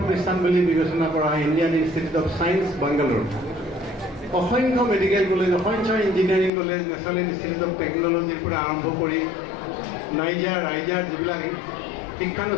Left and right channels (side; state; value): right; drops out; at 6.5 s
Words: প্ৰতিষ্ঠান বুলি বিবেচনা কৰা হয় Indian institute of science, Bangalore, অসংখ্য মেডিকেল কলেজ, অসংখ্য engineering college, national institute of টেকন'লজিৰ পৰা আৰম্ভ কৰি ৰাইজাৰ যিবিলাক